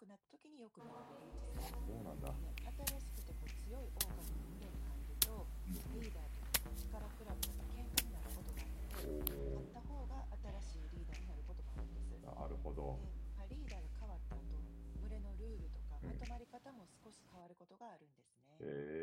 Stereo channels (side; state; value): both; identical; correlation 1.00